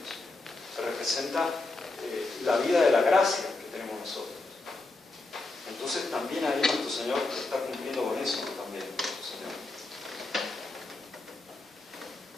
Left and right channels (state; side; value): quieter; right; 3.3 dB